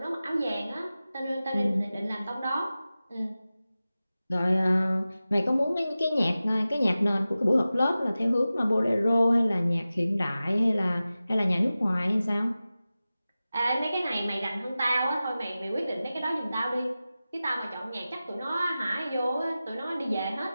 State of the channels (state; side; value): inverted; both; correlation -0.95